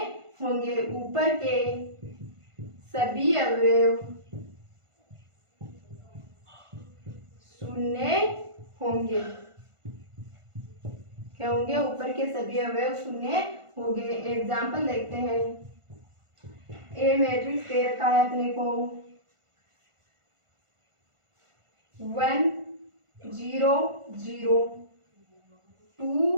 होंगे। ऊपर के सभी अवयव शून्य होंगे। क्या होंगे, ऊपर के सभी अवयव शून्य होंगे। एग्जाम्पल देखते हैं। ए मैट्रिक्स दे रखा है अपने को 1 0 0 2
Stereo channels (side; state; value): left; late; 1.5 ms